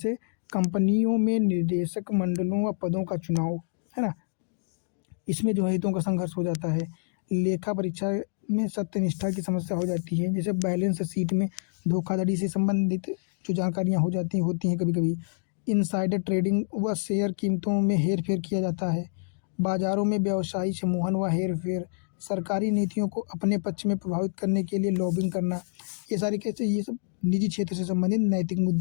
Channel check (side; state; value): right; silent; digital silence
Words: कंपनियों में निर्देशक मंडलों व पदों का चुनाव, है ना, इसमें जो है हितों का संघर्ष हो जाता है। लेखा परीक्षा में सत्यनिष्ठा की समस्या हो जाती है, जैसे बैलेंस शीट में धोखाधड़ी से संबंधित जो जानकारियाँ होती हैं कभी कभी। इनसाइडर ट्रेडिंग व शेयर कीमतों में हेर फेर किया जाता है। बाजारों में व्यवसायी सम्मोहन व हेर फेर, सरकारी नीतियों को अपने पक्ष में प्रभावित करने के लिए लॉबिंग करना, ये सब निजी क्षेत्र से संबंधित नैतिक